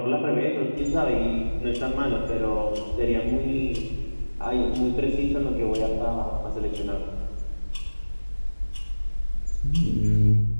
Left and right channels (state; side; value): inverted; both; correlation -1.00